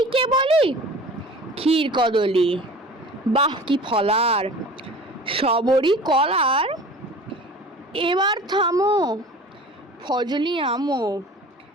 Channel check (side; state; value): both; normal; correlation 0.41